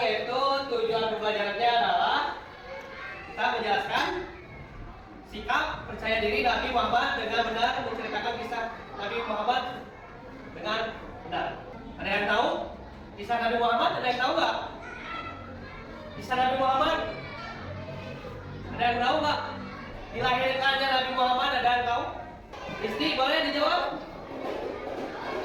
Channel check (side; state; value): both; identical; correlation 1.00